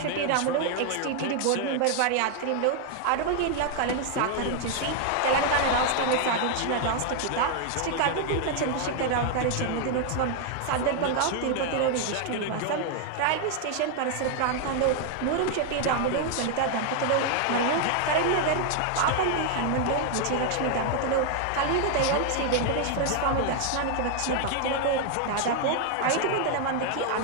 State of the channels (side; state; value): both; different; correlation 0.00